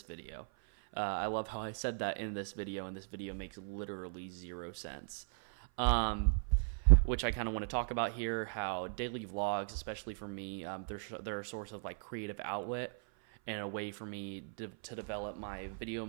video. I love how I said that in this video, and this video makes literally 0 sense. Which I kind of want to talk about here, how daily vlogs, especially for me, they're a source of like creative outlet and a way for me to develop my video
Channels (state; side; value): silent; left; 53 dB below the other